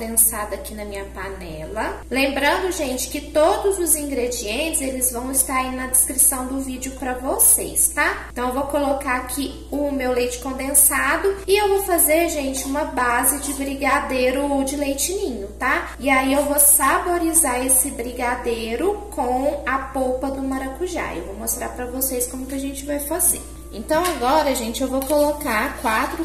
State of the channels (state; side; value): identical; both; correlation 1.00